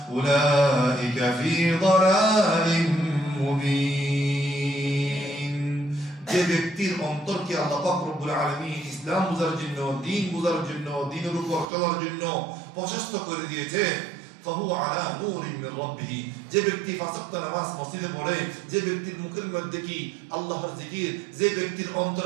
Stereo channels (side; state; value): left; drops out; at 11.7 s